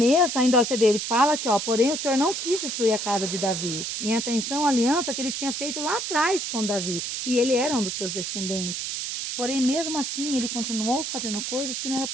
ainda você vê, ele fala que, porém o Senhor não quis destruir a casa de Davi, em atenção à aliança que ele tinha feito lá atrás com Davi. E ele era um dos seus descendentes. Porém, mesmo assim, ele continuou fazendo coisas que não era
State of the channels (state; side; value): noise; right; hiss, 4 dB below the sound